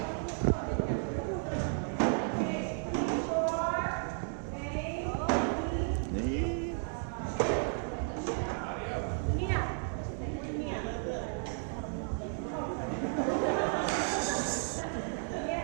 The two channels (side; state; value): left; silent; 55 dB below the other